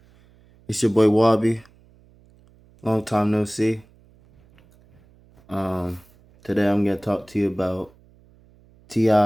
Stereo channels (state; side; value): noise; right; hum, 29 dB below the sound